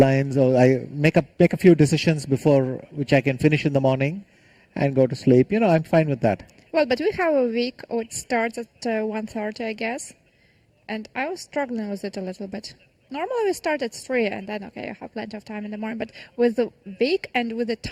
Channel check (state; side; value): identical; both; correlation 1.00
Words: or I make a few decisions before which I can finish in the morning and go to sleep. I'm fine with that. Well, but we have a week which starts at 1:30, I guess, and I was struggling with it a little bit. Normally we start at 3 and then, okay, I have plenty of time in the morning, but with the week and with